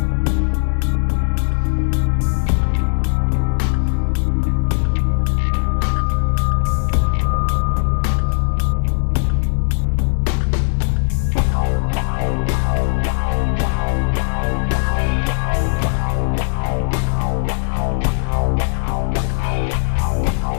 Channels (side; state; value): right; silent; digital silence